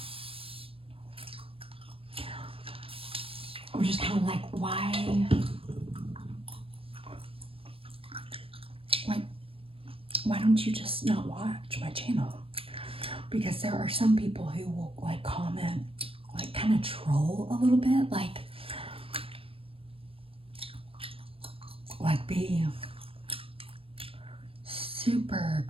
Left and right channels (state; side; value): late; left; 0.27 ms